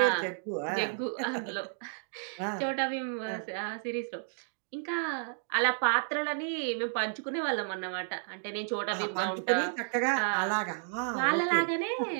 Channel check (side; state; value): left; silent; digital silence